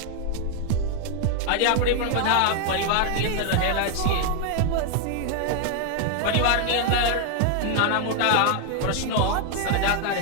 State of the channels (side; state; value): both; different; correlation 0.00